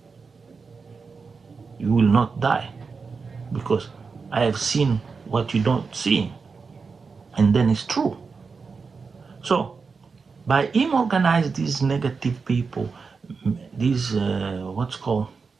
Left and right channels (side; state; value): left; quieter; 4.9 dB